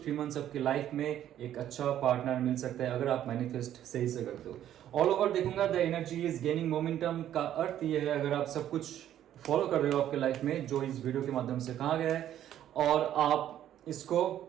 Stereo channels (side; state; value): left; quieter; 11.4 dB